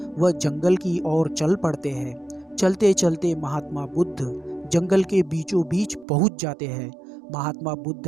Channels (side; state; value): left; drops out; at 6.1 s